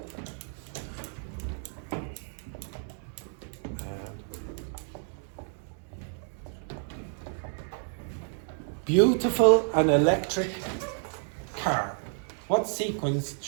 Beautiful and electric car. What sequence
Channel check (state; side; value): silent; left; 56 dB below the other